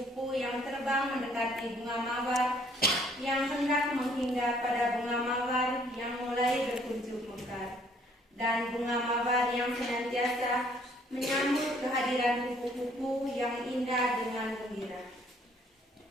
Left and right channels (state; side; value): normal; both; correlation 0.62